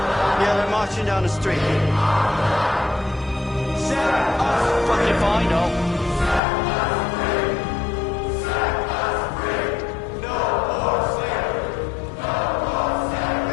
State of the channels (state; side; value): drops out; right; at 6.4 s